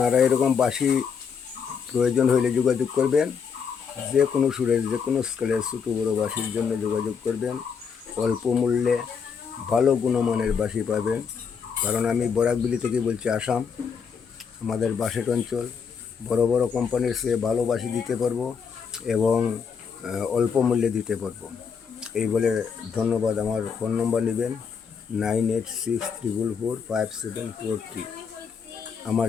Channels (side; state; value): right; quieter; 6.3 dB